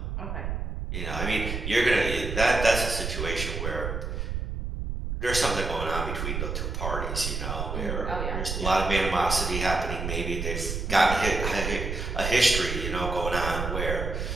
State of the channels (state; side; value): noise; right; rumble, 3 dB below the sound